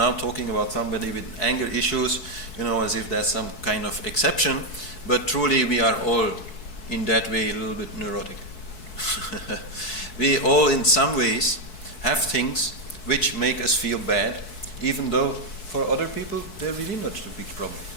talking about somebody with anger issues, as if that's some kind of exception, but truly we are all in that way a little bit neurotic. We all in some ways have things which make us feel bad, even though for other people they're really not a big problem.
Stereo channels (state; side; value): late; right; 4.6 ms